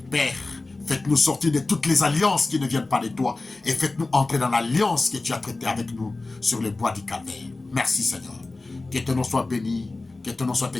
Père, faites-nous sortir de toutes les alliances qui ne viennent pas de toi et faites-nous entrer dans l'alliance que tu as traitée avec nous sur le bois du calvaire. Merci Seigneur. Que ton nom soit béni. Que ton nom soit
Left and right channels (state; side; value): quieter; right; 3.3 dB